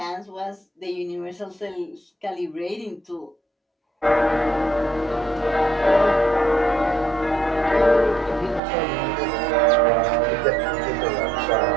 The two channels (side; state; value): left; drops out; at 8.6 s